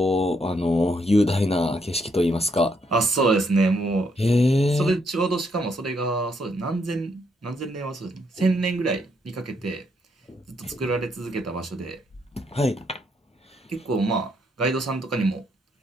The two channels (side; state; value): both; normal; correlation 0.75